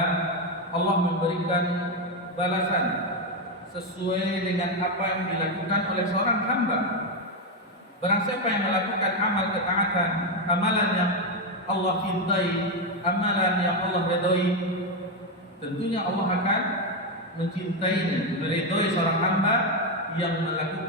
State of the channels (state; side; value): normal; both; correlation 0.07